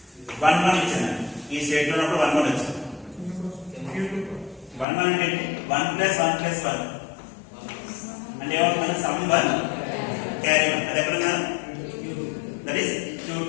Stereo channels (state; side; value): drops out; right; at 4.9 s